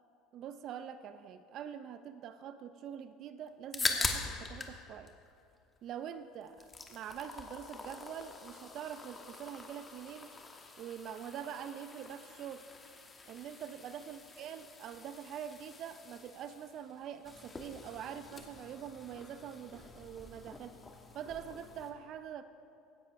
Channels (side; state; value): both; normal; correlation 0.62